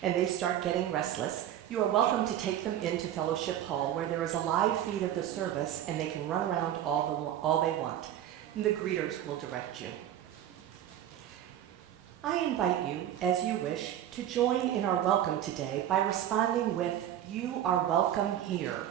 and they start getting restless, you are welcome to take them into Fellowship Hall, where there is a live feed of the service and they can run around all they want. And the greeters will direct you. I invite you, as you wish, to join in our welcome today by responding with, "You are welcome here,"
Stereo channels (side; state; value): left; quieter; 11.3 dB